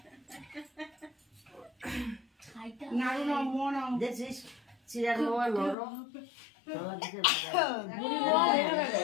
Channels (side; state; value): right; drops out; at 5.8 s